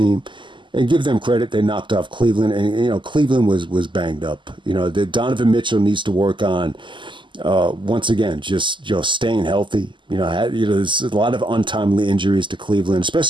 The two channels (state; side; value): late; left; 0.24 ms